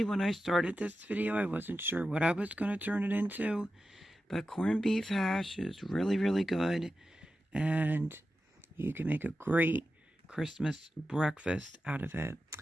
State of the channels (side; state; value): both; normal; correlation 0.92